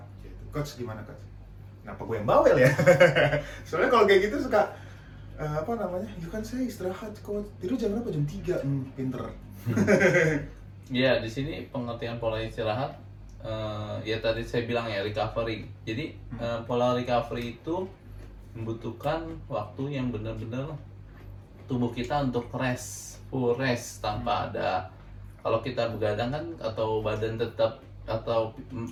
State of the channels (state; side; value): identical; both; correlation 1.00